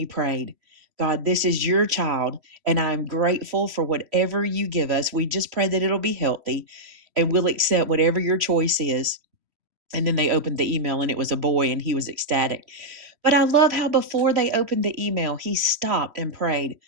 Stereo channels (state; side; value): late; left; 3.1 ms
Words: prayed, "God, this is your child, and I'm grateful for whatever you give us. We just pray that it'll be healthy and we'll accept whatever your choice is." And then they opened the email and it was a boy and he was ecstatic. But I love how before they opened the email, he stopped and prayed,